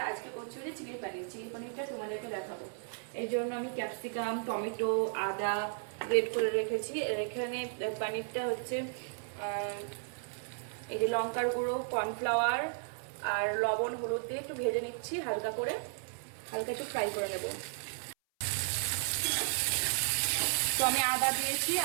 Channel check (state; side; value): silent; left; 55 dB below the other